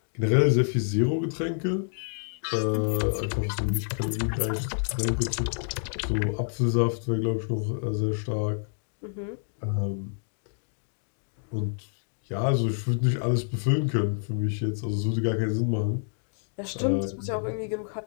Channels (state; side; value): silent; right; digital silence